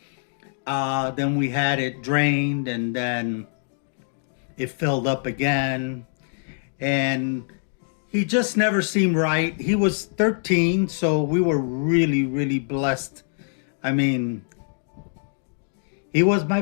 Then we had it drained, and then it filled up again. And he just never seemed right. He was 13, so we were really, really blessed. I mean, he was my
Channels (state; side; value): silent; right; digital silence